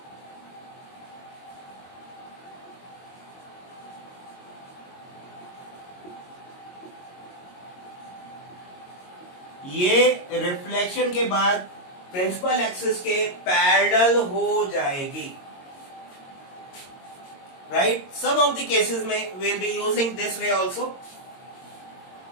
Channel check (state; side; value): late; right; 22 ms